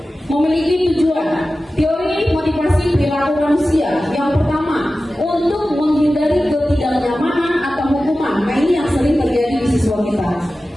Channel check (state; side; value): normal; both; correlation 0.95